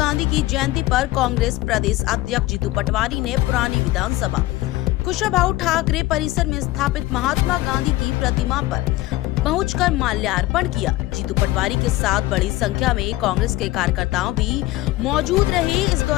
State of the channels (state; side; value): quieter; right; 17.2 dB